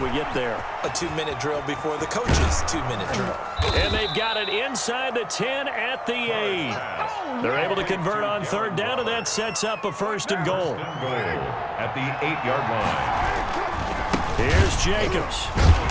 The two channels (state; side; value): identical; both; correlation 1.00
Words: get there. A 2-minute drill before the coach's 2-minute drill. And they've got it inside the 10 at the 8. They're able to convert on 3rd down, and that sets up a 1st and goal. At the 8-yard line. Here's Jacobs.